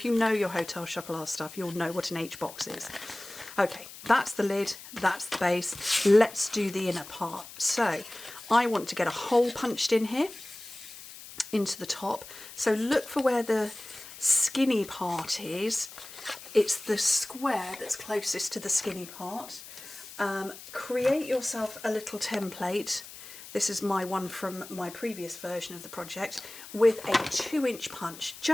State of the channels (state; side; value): noise; left; hiss, 15 dB below the sound